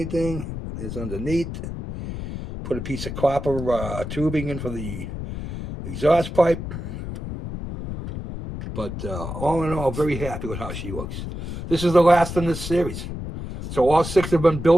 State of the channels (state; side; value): noise; left; rumble, 7 dB below the sound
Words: There's underneath. Put a piece of copper tubing in for the exhaust pipe. But all in all, very happy with how she looks. This is the last in this series. So all 6 have been